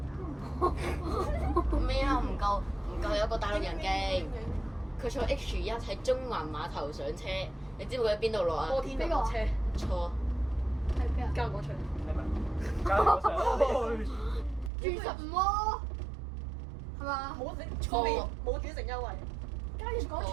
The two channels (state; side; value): drops out; left; at 14.7 s